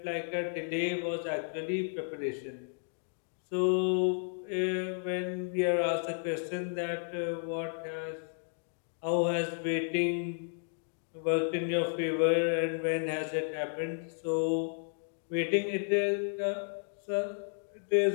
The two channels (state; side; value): silent; right; digital silence